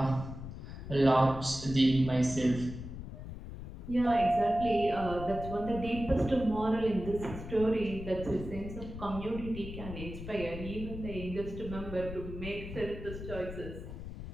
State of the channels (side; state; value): left; noise; rumble, 10 dB below the sound